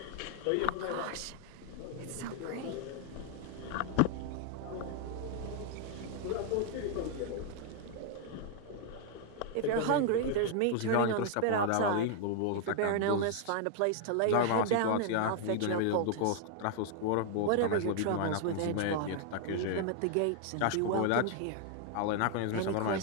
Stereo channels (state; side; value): different; both; correlation 0.00